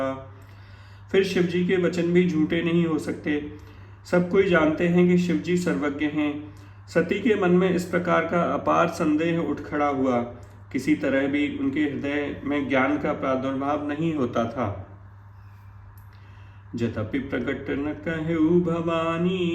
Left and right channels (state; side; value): identical; both; correlation 1.00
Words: फिर शिव जी के वचन भी झूठे नहीं हो सकते। सब कोई जानते हैं कि शिव जी सर्वज्ञ हैं। सती के मन में इस प्रकार का अपार संदेह उठ खड़ा हुआ। किसी तरह भी उनके हृदय में ज्ञान का प्रादुर्भाव नहीं होता था। जतपि प्रकट न कहु